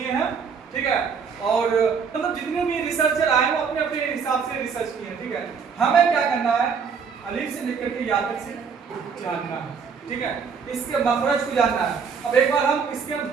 हैं। ठीक है, और मतलब जितने भी रिसर्चर आए वो अपने अपने हिसाब से रिसर्च किए हैं। ठीक है, हमें क्या करना है? अलीफ से लेकर के या तक से जानना है। ठीक है, इसके मखरज को जानना है। अब एक बार हम इसके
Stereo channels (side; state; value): left; quieter; 6.1 dB